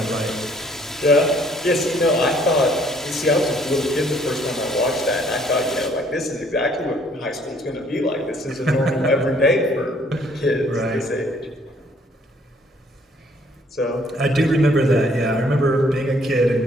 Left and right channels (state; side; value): normal; both; correlation 0.62